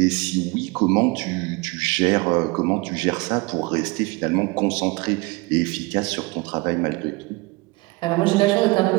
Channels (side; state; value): left; quieter; 25.3 dB